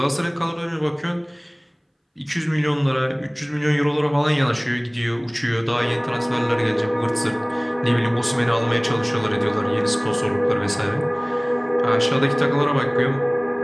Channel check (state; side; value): identical; both; correlation 1.00